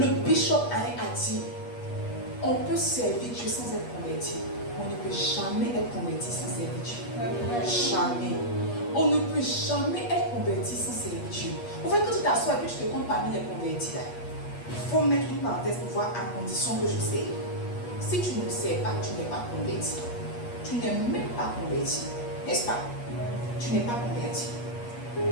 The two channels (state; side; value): late; right; 8.4 ms